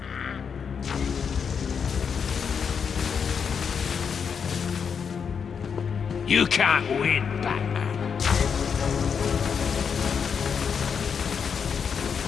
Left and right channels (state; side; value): quieter; right; 6.6 dB